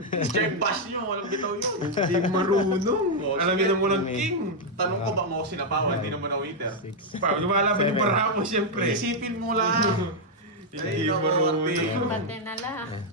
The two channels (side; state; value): both; normal; correlation -0.02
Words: Check bash nyo, walang bitaw yun. Hindi marunong. Oh, Alamin sige. na mo ng king. Tanong ko ba mo sinapawan, hindi naman na waiter. Pa, lumalaban yung Seven. para mo siyempre. Isipin mo lang. Hindi Ay, naku, marunong. Ate. Pati na lang.